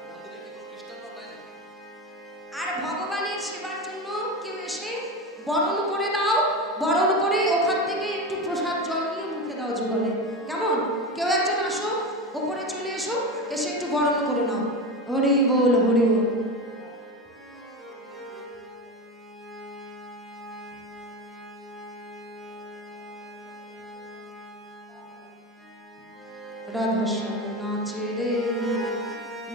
আর ভগবানের সেবার জন্য কেউ এসে বরণ করে দাও, বরণ করে ওখান থেকে একটু প্রসাদ জল নিয়ে মুখে দাও যুগলে, কেমন? কেউ একজন আসো, ওপরে চলে এসো, এসে একটু বরণ করে নাও। হরি বল, হরি বল। রাধা শ্যাম নাচে রে,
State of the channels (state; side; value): normal; both; correlation 0.22